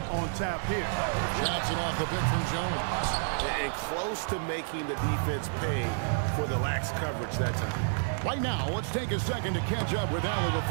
on tap here. Johnson off the bench from Jones. And close to making the defense pay for the lax coverage that time. Right now, let's take a second to catch up with Allie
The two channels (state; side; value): silent; left; digital silence